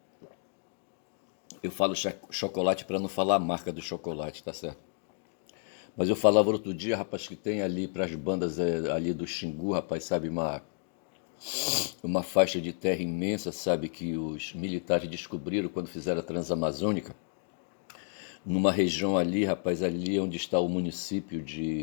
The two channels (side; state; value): right; silent; 57 dB below the other